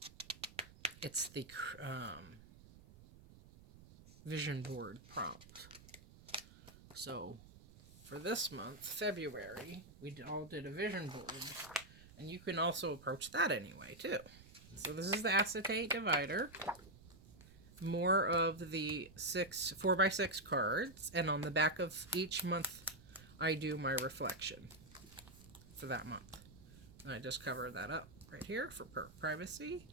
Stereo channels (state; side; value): noise; right; rumble, 20 dB below the sound